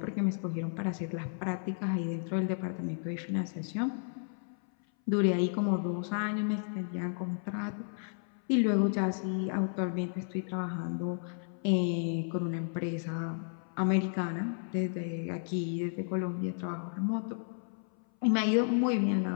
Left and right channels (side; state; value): right; silent; 56 dB below the other